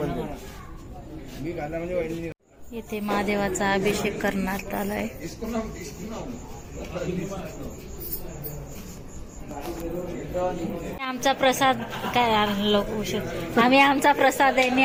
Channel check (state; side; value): identical; both; correlation 1.00